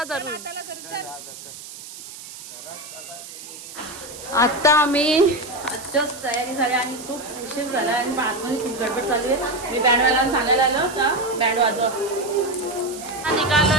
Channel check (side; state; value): right; noise; hiss, 14 dB below the sound